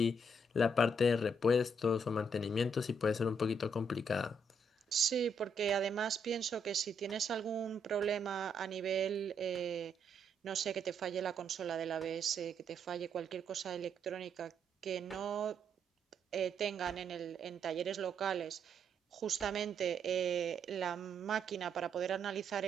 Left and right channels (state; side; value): normal; both; correlation 0.74